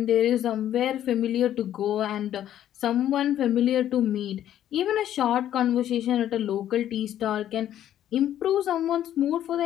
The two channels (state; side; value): quieter; right; 11.4 dB